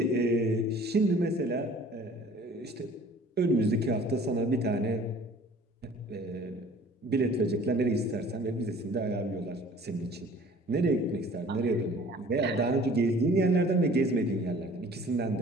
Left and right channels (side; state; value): both; normal; correlation 0.50